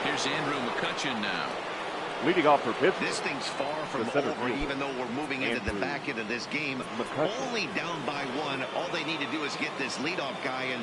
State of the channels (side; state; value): both; identical; correlation 1.00